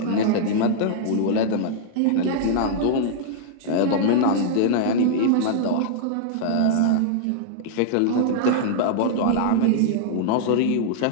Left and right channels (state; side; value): different; both; correlation -0.01